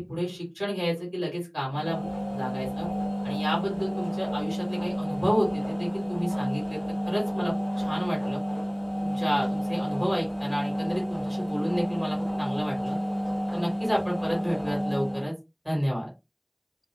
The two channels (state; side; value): identical; both; correlation 1.00